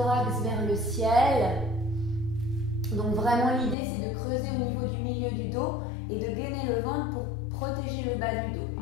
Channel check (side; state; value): right; drops out; at 3.8 s